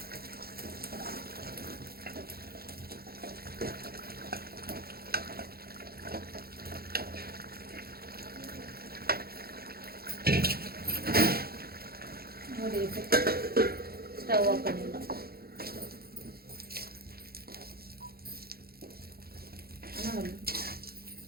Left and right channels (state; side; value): late; left; 0.44 ms